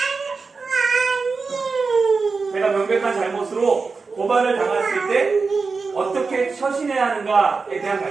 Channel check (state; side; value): quieter; left; 4.5 dB